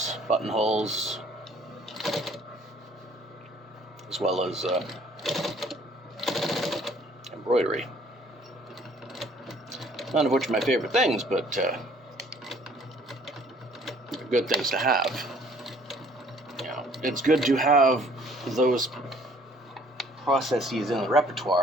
buttonholes, as well as embroidery. None of which are my favorite things, but they're good things to have. It's good to have those processes in the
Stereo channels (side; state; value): both; normal; correlation 0.58